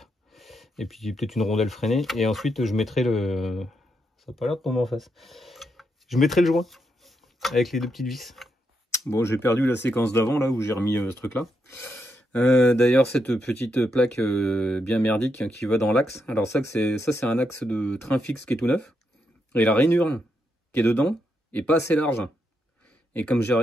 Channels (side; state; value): both; normal; correlation 0.81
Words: et puis peut-être une rondelle freinée, et ensuite je mettrai le... Ça n'a pas l'air de tomber en face. Je mettrai le joint, avec les deux petites vis. Bon, j'ai perdu la séquence d'avant, là, où j'ai remis ce truc-là. D'ailleurs, cette petite plaque bien merdique hein, qui va dans l'axe. Alors ça, c'est un axe de train fixe qui est tout neuf. Et la rainure qui est dedans est pas assez large. Et comme j'ai